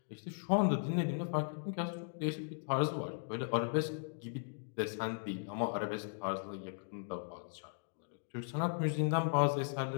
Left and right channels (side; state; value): right; silent; digital silence